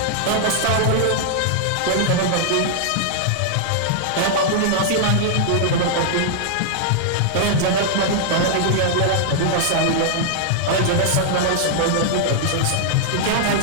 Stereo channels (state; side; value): different; both; correlation -0.01